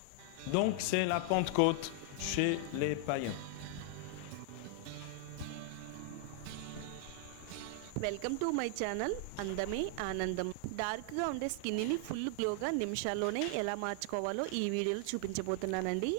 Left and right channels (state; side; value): different; both; correlation 0.00